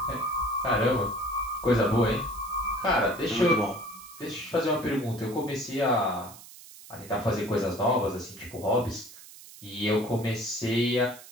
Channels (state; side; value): noise; right; hiss, 18 dB below the sound